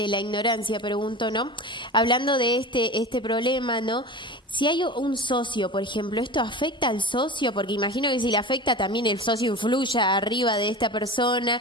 la ignorancia, pregunto, ¿no? Hablando de este problema, ¿no? Si hay un socio, por ejemplo, ¿esto afecta al socio? Porque imagino que si le afecta también el socio influye arriba de esta persona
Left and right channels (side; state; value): both; normal; correlation 0.32